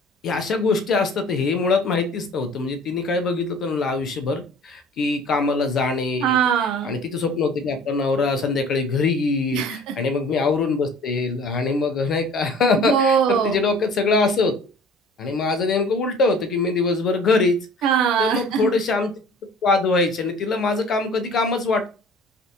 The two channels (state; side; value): normal; both; correlation 0.47